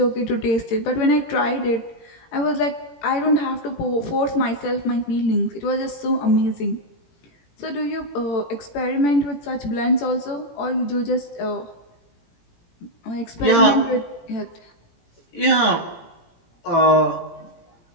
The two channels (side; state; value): right; late; 17 ms